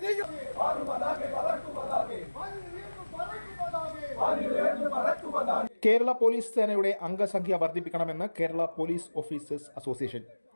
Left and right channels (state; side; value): inverted; both; correlation -1.00